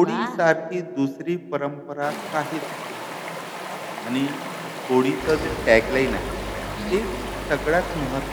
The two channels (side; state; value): both; identical; correlation 1.00